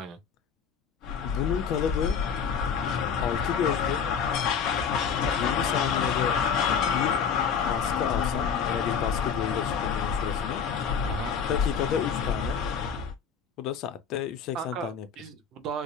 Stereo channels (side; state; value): right; quieter; 6.6 dB